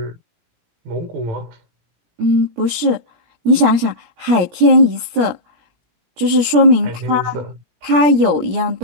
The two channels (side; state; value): left; late; 17 ms